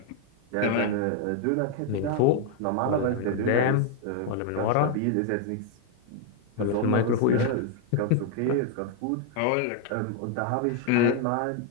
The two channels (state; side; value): different; both; correlation 0.00